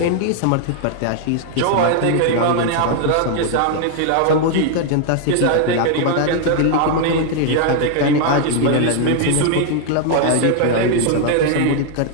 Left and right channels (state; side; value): different; both; correlation 0.00